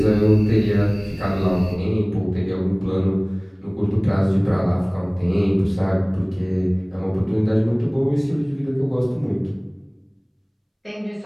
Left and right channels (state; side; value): identical; both; correlation 1.00